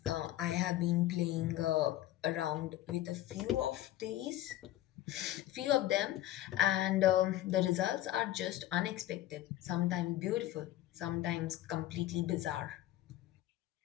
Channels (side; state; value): right; quieter; 14.4 dB